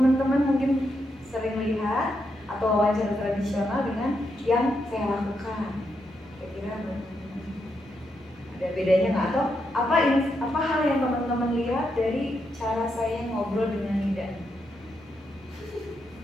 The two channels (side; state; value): both; normal; correlation 0.82